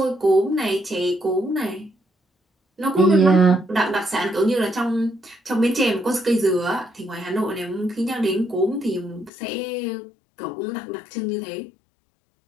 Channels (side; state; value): right; drops out; at 9.3 s